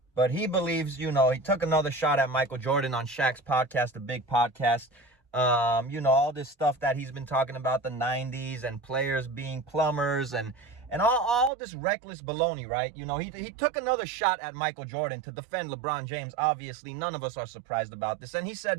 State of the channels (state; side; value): drops out; left; at 11.5 s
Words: but he believes, he took another shot at Michael Jordan on Shaq's podcast, the big podcast. All this stuff that he's been talking about, the 90s and players being plumbers and all this reckless baloney, right? He took another shot at Michael Jordan to defend LeBron James. Obviously, none of us are surprised about this. And he